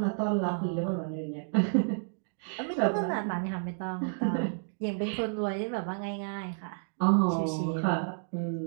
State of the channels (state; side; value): silent; left; digital silence